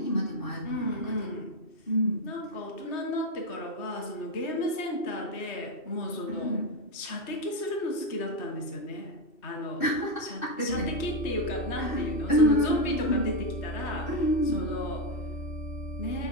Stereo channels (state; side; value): late; right; 2.7 ms